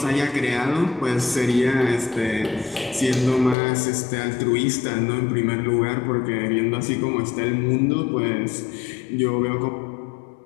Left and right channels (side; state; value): right; drops out; at 3.6 s